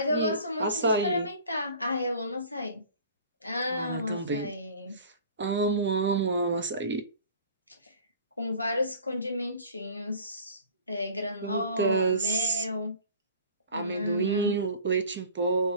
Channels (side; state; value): both; inverted; correlation -0.45